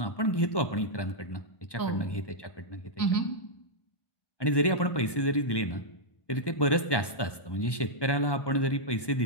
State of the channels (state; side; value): late; right; 1.1 ms